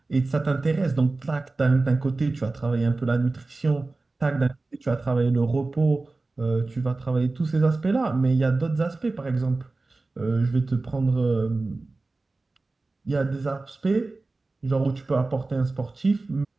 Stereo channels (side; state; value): left; quieter; 3.4 dB